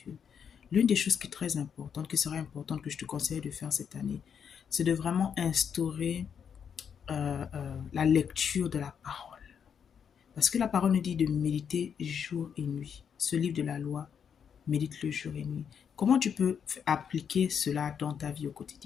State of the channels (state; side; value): quieter; right; 7.5 dB